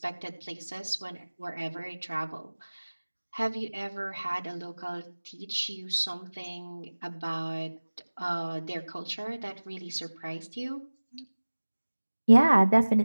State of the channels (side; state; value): both; inverted; correlation -1.00